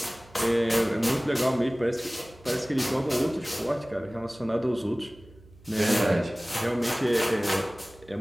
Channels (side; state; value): right; noise; hum, 25 dB below the sound